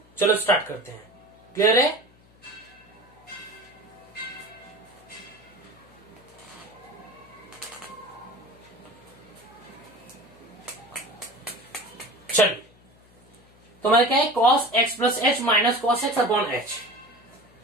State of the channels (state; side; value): noise; left; hum, 28 dB below the sound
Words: चलो स्टार्ट करते हैं। क्लियर है? चलिए, तो हमारा क्या है, cos x plus H minus cos x upon h.